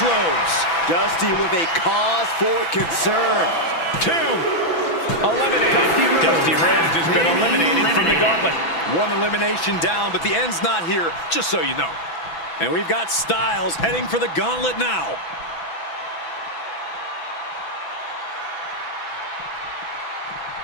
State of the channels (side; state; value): right; late; 6.0 ms